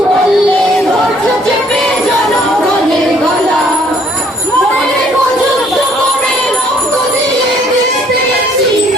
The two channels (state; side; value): normal; both; correlation 0.62